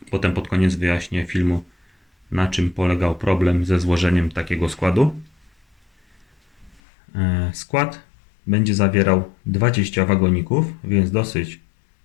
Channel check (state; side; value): drops out; right; at 6.8 s